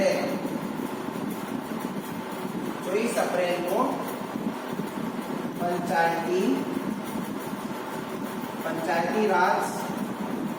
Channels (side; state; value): both; identical; correlation 1.00